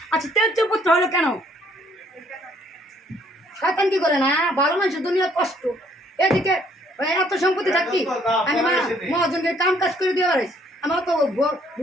আচ্ছা তেজ পুত্র হলো কেন? শয়তান কি করে না, ভালো মানুষের দুনিয়ার কষ্ট। এদিকে এত সম্পত্তি থাকি আমি মহাজনকে কাম কাজ করে দিয়ে পারিস। আমার তো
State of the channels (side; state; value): both; normal; correlation 0.64